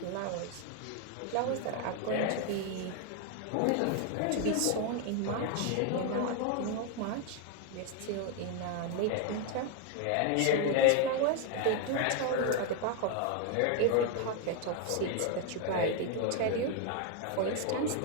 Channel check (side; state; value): both; different; correlation 0.01